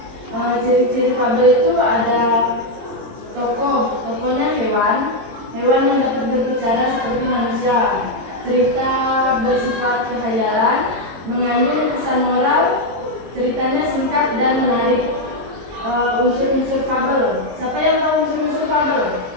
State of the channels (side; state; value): left; late; 22 ms